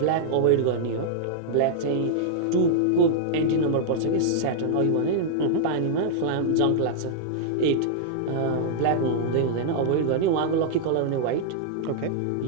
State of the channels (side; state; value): both; different; correlation -0.02